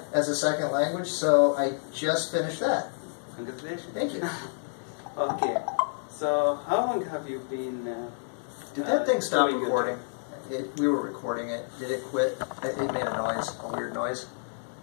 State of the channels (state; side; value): silent; right; digital silence